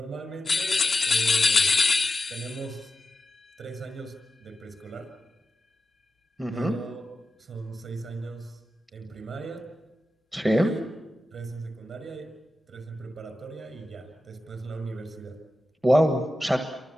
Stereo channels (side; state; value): both; normal; correlation 0.91